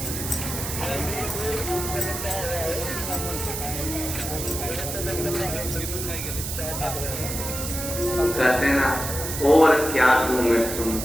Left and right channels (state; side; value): noise; right; hiss, 5 dB below the sound